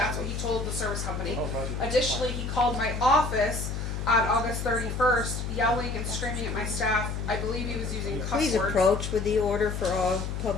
what he told the service company. Additionally, he called my office on August 31st, yelling and screaming at my staff. I believe he was using cuss Please words. approach with the order for all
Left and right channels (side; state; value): left; noise; hum, 4 dB below the sound